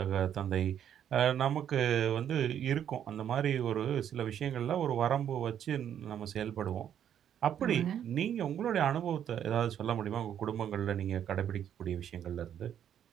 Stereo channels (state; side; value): quieter; left; 9.6 dB